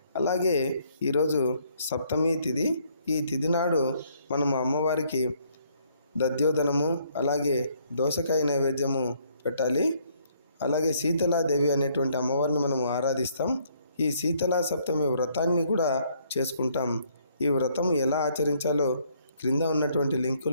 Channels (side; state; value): both; inverted; correlation -0.67